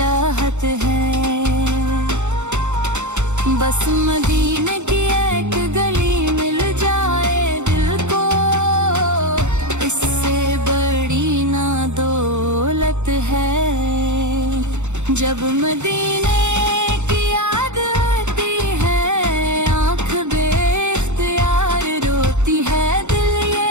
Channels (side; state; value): left; late; 0.83 ms